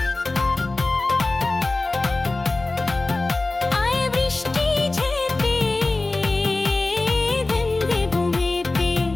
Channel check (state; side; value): quieter; right; 3.2 dB